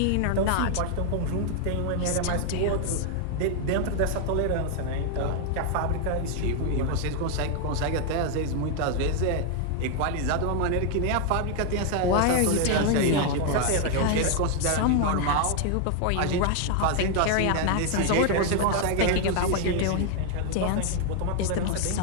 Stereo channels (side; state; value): both; different; correlation 0.00